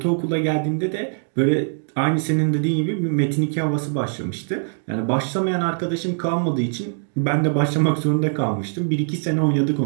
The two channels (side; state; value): left; silent; digital silence